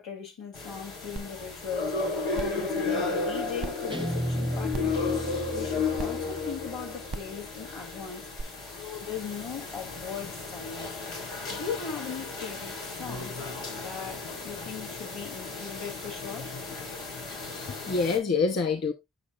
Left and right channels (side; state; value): right; quieter; 3.6 dB